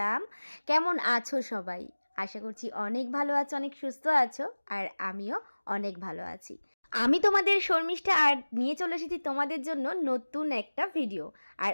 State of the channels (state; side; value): inverted; both; correlation -1.00